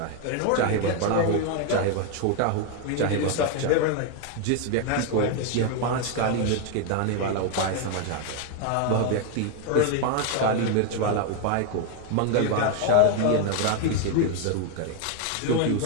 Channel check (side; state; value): both; different; correlation 0.01